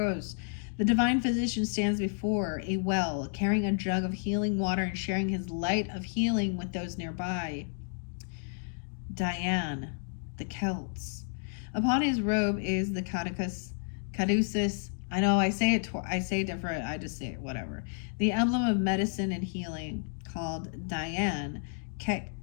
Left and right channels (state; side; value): silent; right; 57 dB below the other